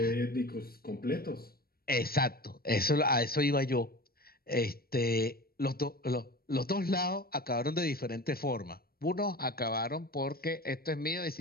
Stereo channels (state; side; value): late; right; 0.44 ms